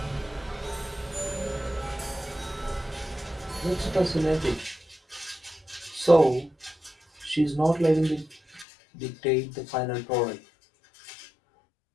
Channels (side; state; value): right; drops out; at 8.7 s